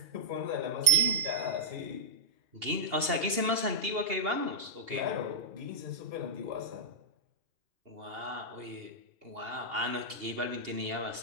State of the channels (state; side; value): late; left; 2.8 ms